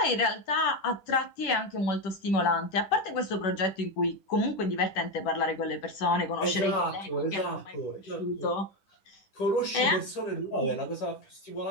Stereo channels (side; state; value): right; late; 10 ms